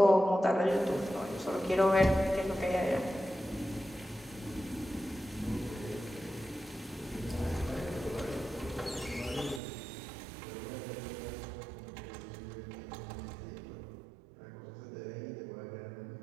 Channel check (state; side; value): drops out; left; at 9.6 s